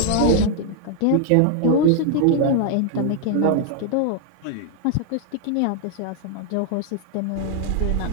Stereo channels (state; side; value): different; both; correlation 0.00